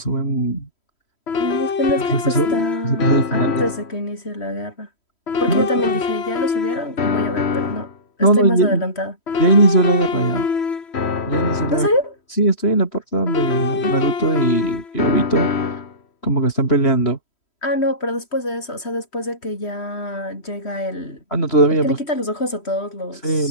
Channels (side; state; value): right; late; 3.1 ms